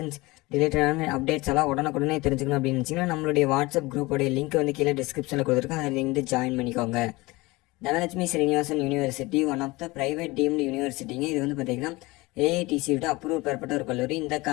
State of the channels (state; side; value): quieter; right; 22.1 dB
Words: ரிலேட்டடான அப்டேட்ஸ் எல்லாம் உடனுக்குடனே தெரிஞ்சுக்கணும் அப்படின்னு நினச்சிங்கன்னா நம்மளுடைய வாட்ஸ்அப் குரூப்போடைய லிங்க் வந்து கீழே டிஸ்கிரிப்ஷனில் கொடுத்துருக்கோம். அதை வந்து ஜாயின் பண்ணிக்கோங்க. Dhanalakshmi Srinivasan university one of the private deemed யூனிவர்சிட்டிங்க. இது வந்து பார்த்தீங்கன்னா ஏஐடிசியோட அப்ரூவ் பெறப்பட்ட ஒரு கல்லூரி. இந்த